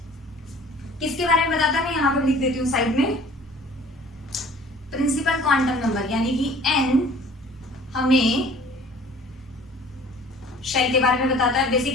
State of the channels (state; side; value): normal; both; correlation 0.49